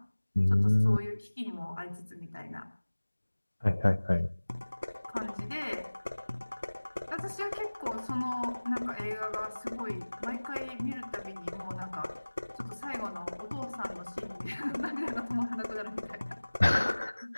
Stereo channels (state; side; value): inverted; both; correlation -1.00